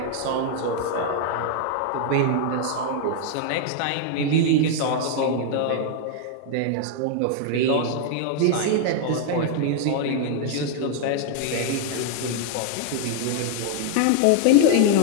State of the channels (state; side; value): different; both; correlation 0.00